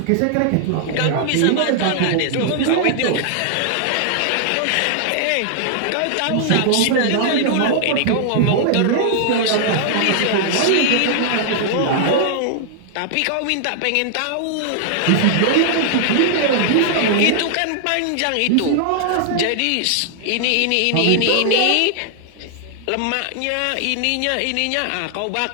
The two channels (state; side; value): different; both; correlation 0.00